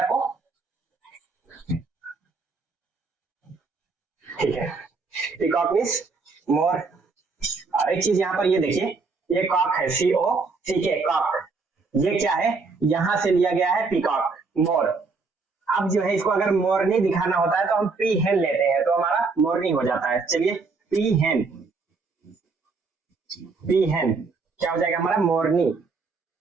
आपको? ठीक है, पीकॉक मीन्स मोर. और एक चीज यहाँ पर ये देखिए, ये कॉक है, COCK, कॉक. ये क्या है? यहां से लिया गया है पीकॉक, मोर. अब जो है इसको अगर मोरनी दिखाना होता है तो हम पी हेन लेते हैं, तो हमारा मोरनी हो जाता है. चलिए, पी हेन. पी हेन क्या हो जाएगा हमारा? मोरनी.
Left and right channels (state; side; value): quieter; left; 4.2 dB